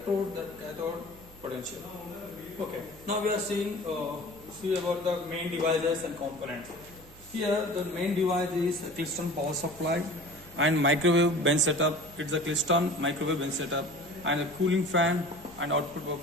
the cathode potential. Okay, now we are see about the main devices and components. Here the main device is a Klystron power supply and microwave bench setup. It's a Klystron microwave bench setup and a cooling fan, and output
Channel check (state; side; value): noise; right; hum, 22 dB below the sound